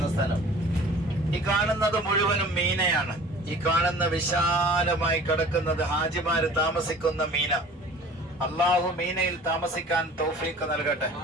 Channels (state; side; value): normal; both; correlation 0.46